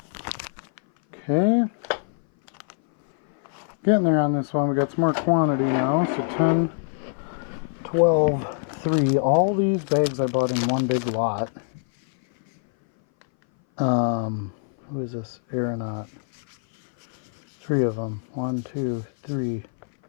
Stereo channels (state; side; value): silent; right; 59 dB below the other